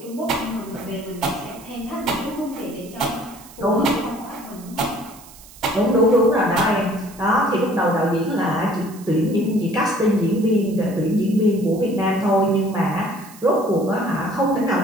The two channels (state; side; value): noise; right; hiss, 21 dB below the sound